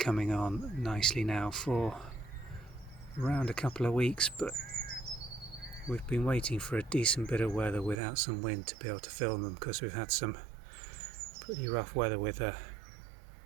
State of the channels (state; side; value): drops out; left; at 8.0 s